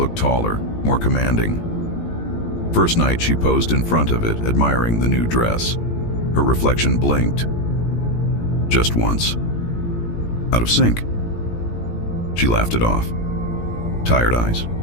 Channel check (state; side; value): late; right; 17 ms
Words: taller, more commanding. First night she posed in front of it, admiring the new dress. Her reflection blinked. Just once. Out of sync. She laughed it off. Tired eyes.